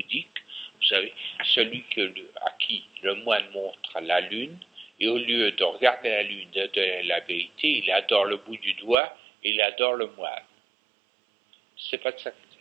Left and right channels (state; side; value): drops out; left; at 9.0 s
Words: vous savez, celui à qui le moine montre la lune, et au lieu de regarder la lune, de la vérité, il adore le bout du doigt, et il adore le moine. C'est pas de ça qu'il